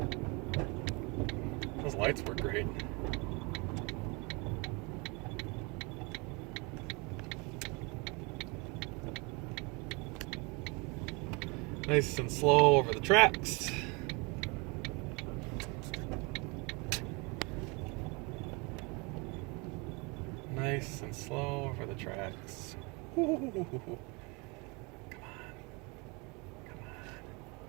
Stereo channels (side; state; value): left; quieter; 29.0 dB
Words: Those lights were great. Nice and slow over the tracks. Nice and slow over the tracks. Ooh. Come on. Come on.